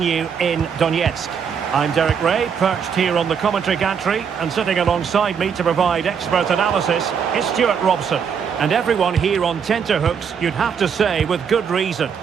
in Donetsk. I'm Derek Ray, perched here on the commentary gantry, and sitting alongside me to provide expert analysis is Stuart Robson. And everyone here on tenterhooks, you'd have to say with good reason.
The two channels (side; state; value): left; quieter; 6.9 dB